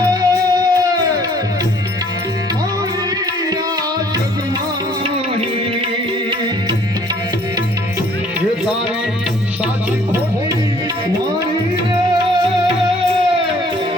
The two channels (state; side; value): normal; both; correlation 0.58